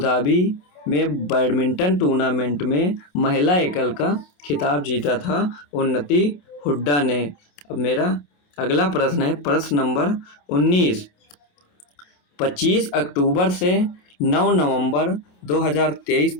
में बैडमिंटन टूर्नामेंट में महिला एकल का खिताब जीता था उन्नति हुड्डा ने। अब मेरा अगला प्रश्न है प्रश्न नंबर 19। 25 अक्टूबर से 9 नवंबर 2023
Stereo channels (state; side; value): late; right; 28 ms